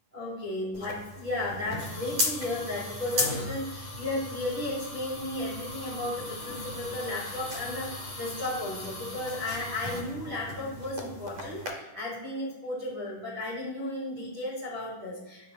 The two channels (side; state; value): left; late; 10 ms